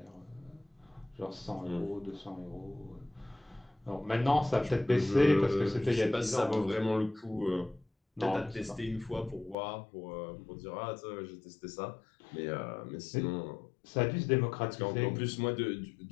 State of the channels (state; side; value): drops out; right; at 9.6 s